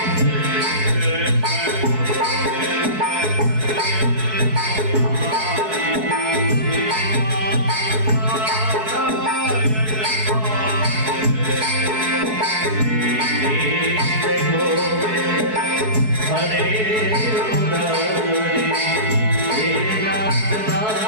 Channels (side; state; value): left; late; 4.6 ms